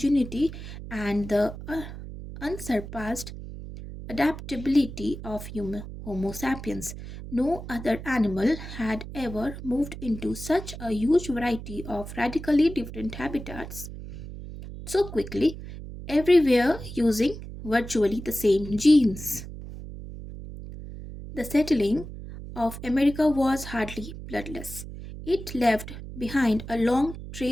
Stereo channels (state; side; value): noise; right; hum, 11 dB below the sound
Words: and the unsurpassed adaptability of Homo sapiens. No other animal had ever moved into such a huge variety of radically different habitats so quickly, everywhere using virtually the same genes. The settling of America was hardly bloodless. It left behind a long